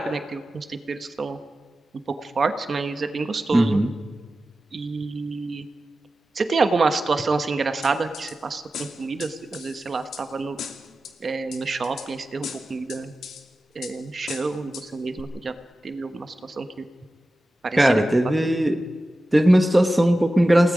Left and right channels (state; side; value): normal; both; correlation 0.94